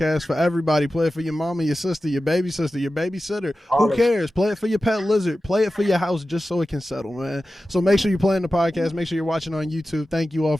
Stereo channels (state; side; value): normal; both; correlation 0.94